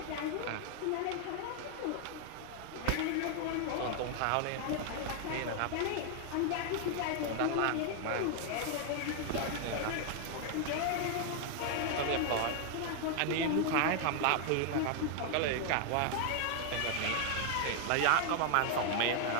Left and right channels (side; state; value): both; different; correlation 0.00